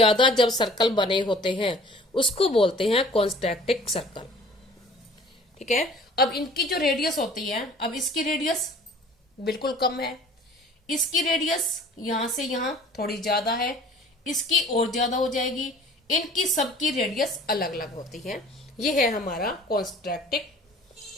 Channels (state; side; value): normal; both; correlation 0.49